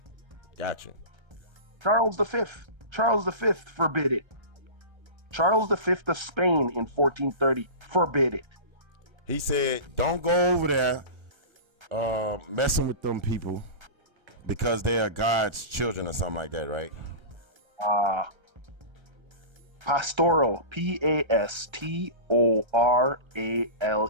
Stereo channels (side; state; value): left; late; 1.3 ms